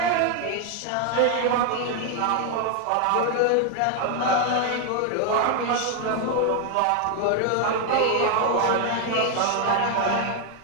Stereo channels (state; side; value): different; both; correlation 0.01